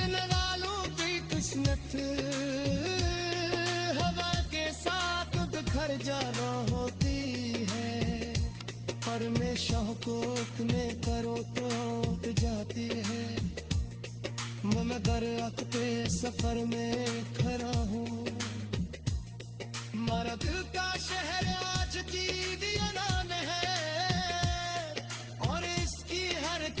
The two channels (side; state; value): both; identical; correlation 1.00